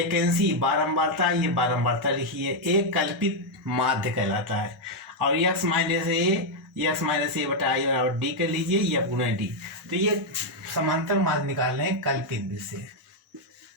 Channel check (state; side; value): normal; both; correlation 0.00